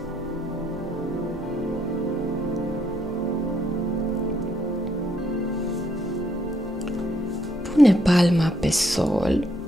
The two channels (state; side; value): normal; both; correlation 0.72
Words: Pune palma pe sol